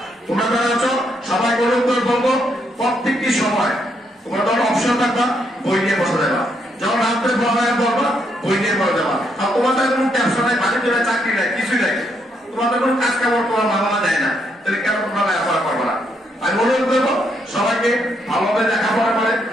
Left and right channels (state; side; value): normal; both; correlation 0.76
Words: তোমরা যারা আছো সবাই অনুরোধ করে বলবো প্রত্যেকটি সময় তোমরা যখন অপশন থাকবা বই নিয়ে বসে যাবা, যখন রাত্রে পড়ালেখা করবা বই নিয়ে পড়ে যাবা। আর তোমাদের কোনো ব্যবসা নাই, বাণিজ্য নাই, চাকরি নাই, কিছুই নাই, তোমাদের কোনো কাজ কামড় তোমার বাবা দেয় না, তাহলে কেন তোমরা লেখাপড়া করবো না? আমি অনুরোধ করবো সবাইকে ভালোভাবে লেখাপড়া করে